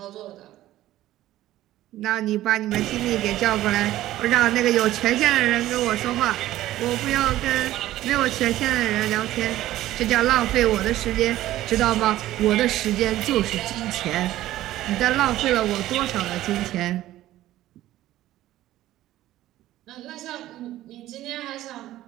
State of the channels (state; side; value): quieter; left; 14.6 dB